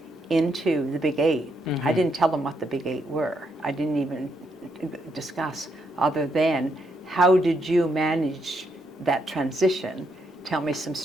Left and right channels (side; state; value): both; normal; correlation 0.77